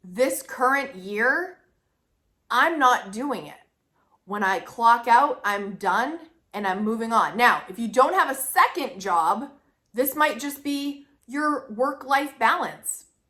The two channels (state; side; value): identical; both; correlation 1.00